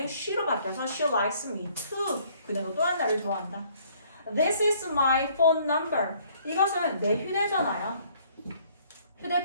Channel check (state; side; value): inverted; both; correlation -0.61